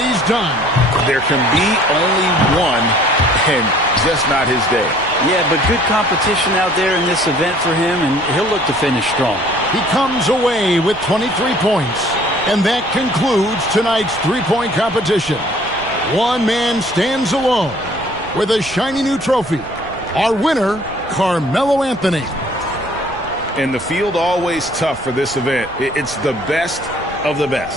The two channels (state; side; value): noise; right; rumble, 18 dB below the sound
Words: done. There can be only one, and just not his day. Yeah, but good competition out there in this event for him, and he'll look to finish strong. He comes away with 23 points. And that concludes tonight's three-point competition. One man stands alone with a shiny new trophy. Our winner, Carmelo Anthony. And the field always tough for this event. It's the best of the